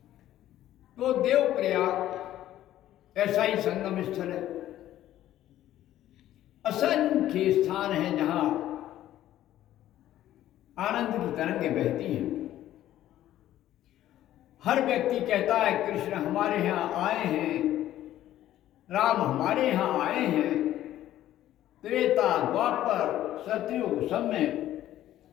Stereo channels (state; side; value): quieter; right; 13.1 dB